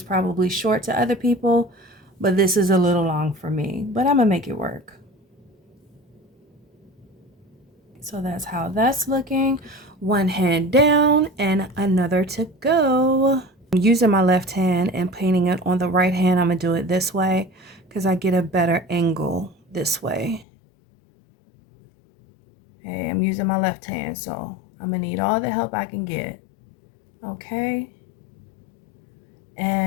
probably short to other people, but this is a little long for me. But I'm going to make it work. So that's how that's looking. One hand down and another to go. I'm using my left hand and painting it on the right hand. I'm going to do it this way because I get a better angle this way. Okay, I'm using my left hand, so I'm going to need all the help I can get. Okay.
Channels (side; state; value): right; drops out; at 20.5 s